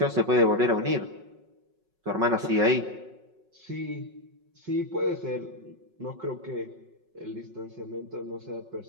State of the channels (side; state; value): left; late; 5.4 ms